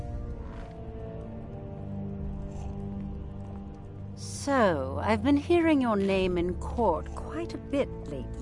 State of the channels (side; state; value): both; identical; correlation 1.00